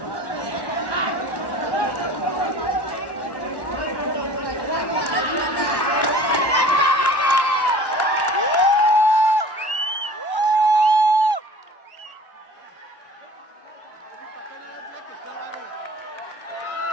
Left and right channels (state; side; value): late; right; 1.1 ms